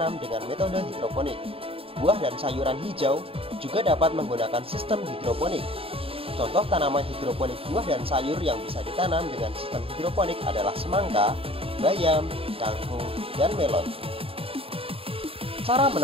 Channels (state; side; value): late; left; 0.27 ms